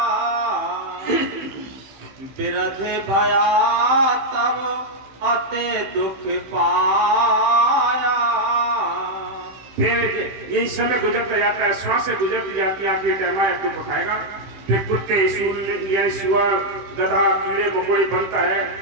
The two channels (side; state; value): left; late; 15 ms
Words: बिरध भया तब अते दुख पाया। फिर यही समय गुजरता जाता है, श्वासें गुजरती जाती है, आखिरी टाइम आया दुख उठाएगा। फिर कुत्ते, सूअर, सुअर, गधा, कीड़े मकोड़े बनता है,